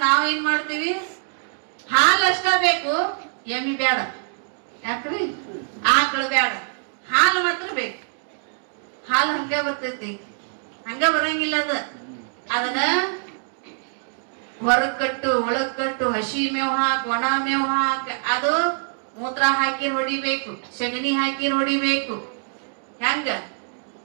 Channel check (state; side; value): silent; left; 60 dB below the other